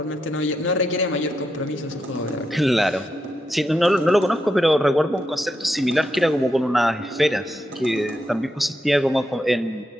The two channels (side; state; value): both; normal; correlation 0.84